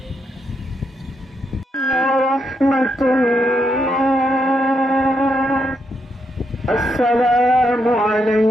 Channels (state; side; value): normal; both; correlation 0.80